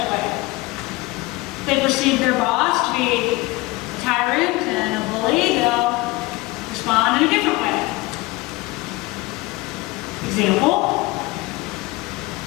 a way. If they perceive their boss to be a tyrant and a bully, they'll respond in a different way. Example,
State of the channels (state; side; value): quieter; right; 21.3 dB